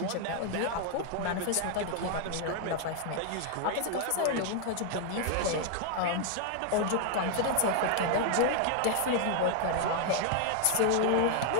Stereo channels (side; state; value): both; different; correlation 0.00